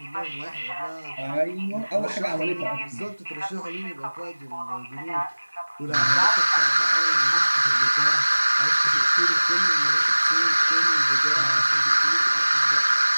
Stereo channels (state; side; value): inverted; both; correlation -1.00